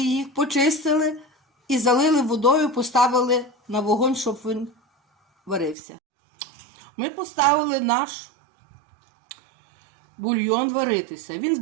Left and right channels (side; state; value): left; drops out; at 5.8 s